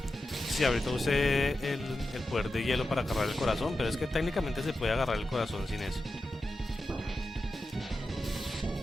Sí, ahorita usé el poder de hielo para agarrar el corazón, pero es que técnicamente se puede agarrar el corazón sin eso.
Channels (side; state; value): both; normal; correlation 0.91